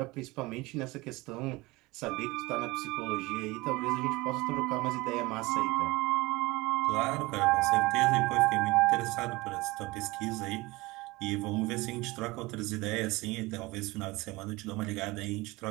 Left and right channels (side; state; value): left; quieter; 22.0 dB